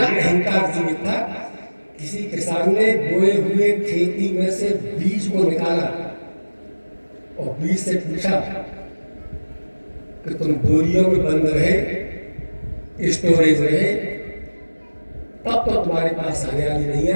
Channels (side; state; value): both; inverted; correlation -1.00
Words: अहंकार जीवित था, किसी किसान ने बोए हुए खेती में से बीज को निकाला और बीज से पूछा कि तुम बोरियों में बंद रहे, स्टोरेज रहे, तब तो तुम्हारे पास हरियाली नहीं